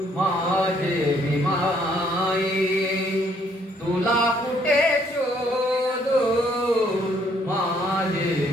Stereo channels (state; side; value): normal; both; correlation 0.66